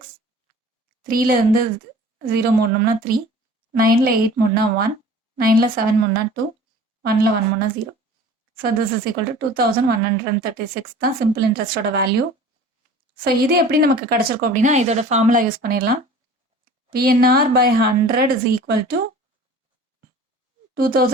3லேருந்து 0 மூடணும்னா 3, 9ல் 8 மூடனா 1, 9ல் 7 மூடனா 2, 1ல் 1 மூடனா 0. So this is equal to 2,136 தான் சிம்பிள் இன்ட்ரெஸ்டோட வேல்யூ. ஸோ இது எப்படி நமக்கு கிடச்சிருக்கும் அப்படின்னா இதோட ஃபார்முலா யூஸ் பண்ணிடலாம். PNR by 100 is equal to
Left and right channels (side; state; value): both; normal; correlation 0.44